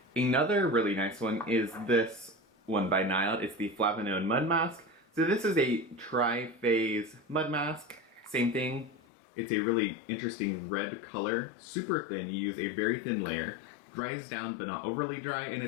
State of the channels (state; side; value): drops out; right; at 9.0 s